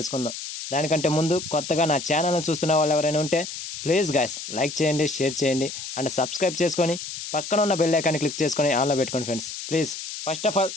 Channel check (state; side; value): noise; left; hiss, 8 dB below the sound